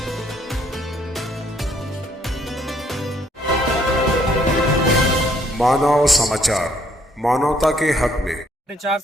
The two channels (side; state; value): both; normal; correlation 0.67